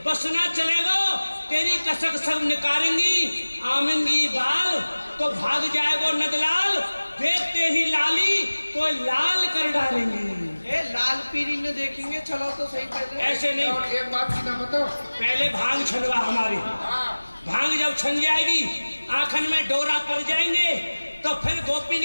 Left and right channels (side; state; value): both; inverted; correlation -1.00